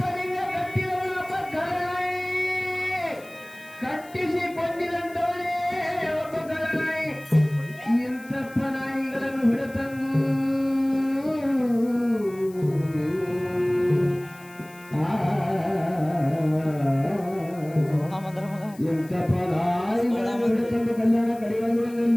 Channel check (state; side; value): noise; left; hiss, 23 dB below the sound